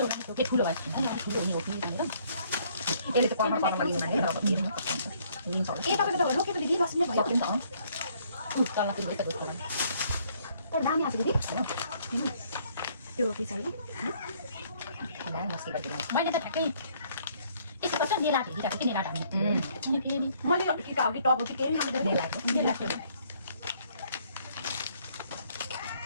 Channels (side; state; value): both; inverted; correlation -0.64